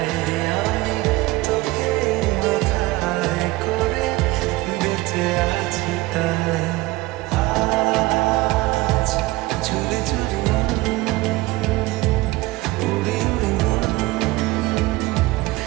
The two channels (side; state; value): left; quieter; 19.9 dB